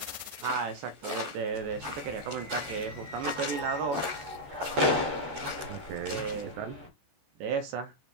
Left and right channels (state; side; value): late; left; 14 ms